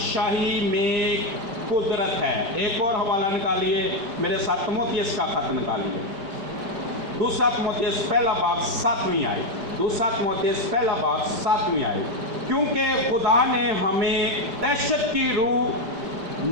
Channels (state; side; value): late; left; 5.0 ms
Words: میں قدرت ہے۔ ایک اور حوالہ نکالیے میرے ساتھ، تیموتھیوس کا خط نکالیے، دوسرا تیموتھیوس پہلا باب 7ویں آیت، دوسرا تیموتھیوس پہلا باب 7ویں آیت۔ کیونکہ خدا نے ہمیں دہشت کی روح